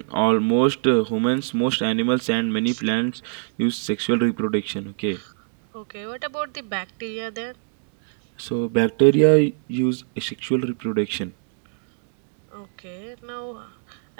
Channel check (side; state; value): left; silent; digital silence